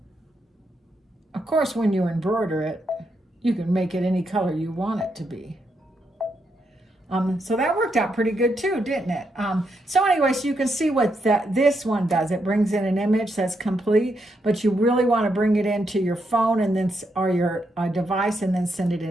Of course, when you embroider it, you can make it any color you want it to be. So that worked out pretty good too, didn't it? So anyway, so you can see what this one does. It brings in an image that's complete, but you really want to bring it into your phone and then or your device and then send it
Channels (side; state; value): both; normal; correlation 0.80